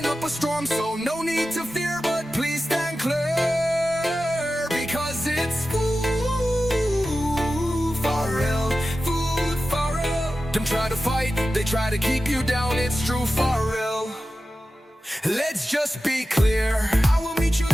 up a storm, so no need to fear, but please stand clear, because it's Food-Farrell. Food-Farrell. Them try to fight, they try to keep you down, it's true Farrell. Let's just be clear, I will meet you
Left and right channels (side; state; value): both; normal; correlation 0.93